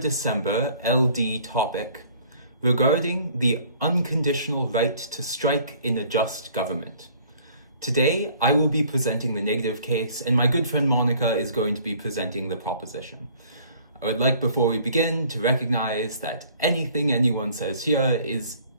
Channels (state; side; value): inverted; both; correlation -0.55